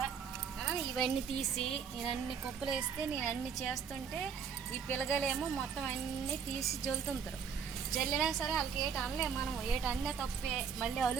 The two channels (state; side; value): quieter; left; 6.7 dB